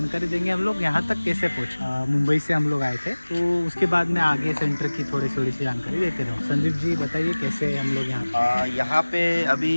देंगे। हम लोग यहाँ तक कैसे पहुँचे? मुंबई से हम लोग आए थे, तो उसके बाद मैं आगे सेंटर की थोड़ी सी जानकारी देते रहूँ। संदीप जी बताइए कैसे हम लोग यहाँ यहाँ पे अभी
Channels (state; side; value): inverted; both; correlation -1.00